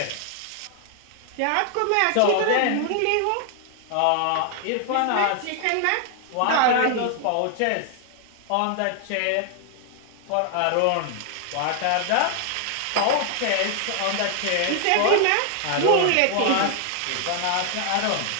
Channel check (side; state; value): both; different; correlation 0.00